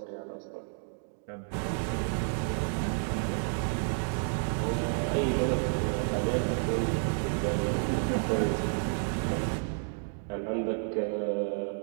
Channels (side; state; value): left; silent; 57 dB below the other